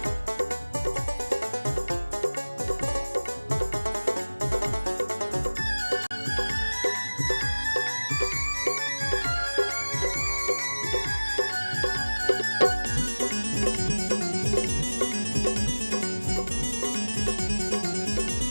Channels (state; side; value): inverted; both; correlation -1.00